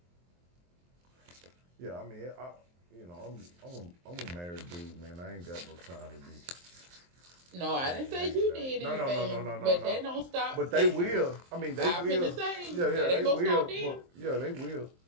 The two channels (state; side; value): late; left; 23 ms